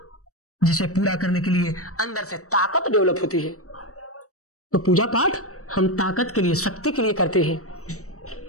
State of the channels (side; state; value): right; late; 0.65 ms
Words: जिसे पूरा करने के लिए अंदर से ताकत डेवलप होती है। तो पूजा पाठ हम ताकत के लिए, शक्ति के लिए करते हैं।